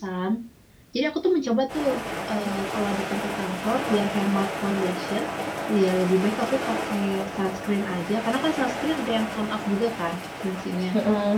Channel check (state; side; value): identical; both; correlation 1.00